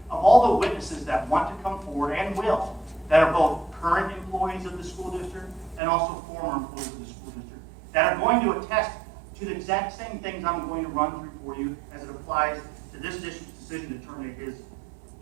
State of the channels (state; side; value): drops out; left; at 5.8 s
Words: of all the witnesses that want to come forward and will, that are both current employees of the school district and also former employees of the school district, that are going to attest to the exact same things I'm going to run through for you as it applies to this district's decision to terminate his